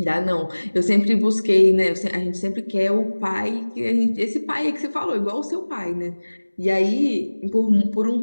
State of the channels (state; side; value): inverted; both; correlation -1.00